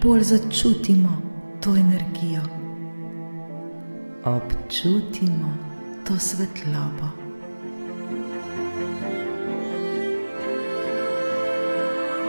bolj začutimo to energijo. Občutimo to svetlobo.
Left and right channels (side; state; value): both; inverted; correlation -1.00